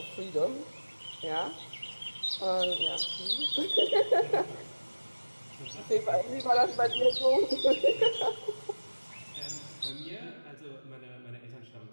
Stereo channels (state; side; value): inverted; both; correlation -1.00